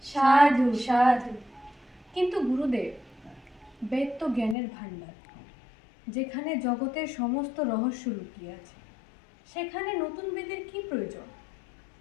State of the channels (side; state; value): right; drops out; at 4.5 s